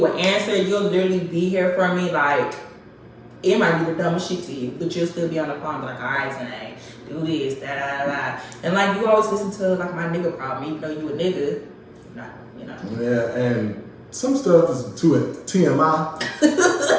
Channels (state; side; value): identical; both; correlation 1.00